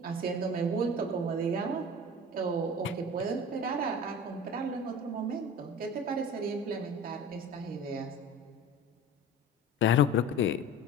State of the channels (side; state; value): both; normal; correlation 0.37